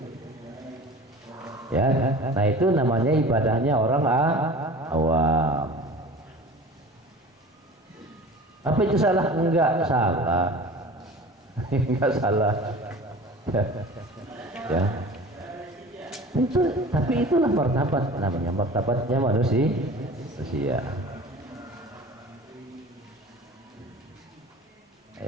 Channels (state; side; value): normal; both; correlation 0.40